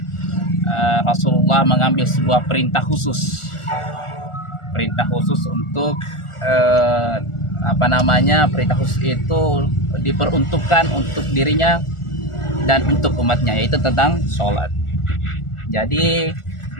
Rasulullah mengambil sebuah perintah khusus untuk perintah khusus itu diperuntukkan untuk dirinya dan untuk umatnya, yaitu tentang sholat. Jadi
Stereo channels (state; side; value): late; right; 1.4 ms